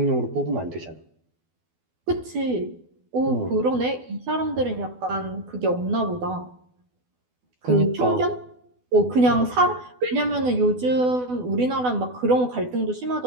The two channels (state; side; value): late; left; 12 ms